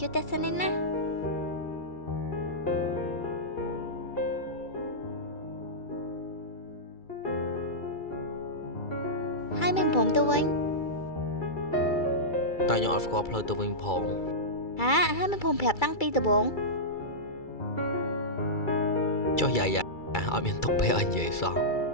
ួយតែសិននេះណាហើយមិនព្រមទៅវិញតែខ្ញុំអត់ស្គាល់ផ្លូវទៅវិញផងហើយមិនព្រមប្រាប់តាំងពីដំបូងចុះយាយអត់មានទុកពេលឲ្យនិយាយសោះ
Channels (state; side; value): late; right; 2.3 ms